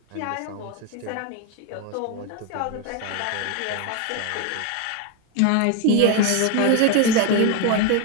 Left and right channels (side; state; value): both; different; correlation 0.02